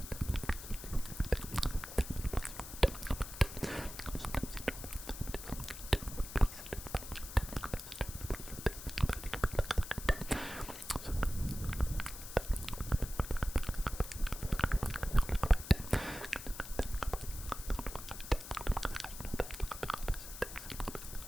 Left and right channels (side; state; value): left; noise; hiss, 11 dB below the sound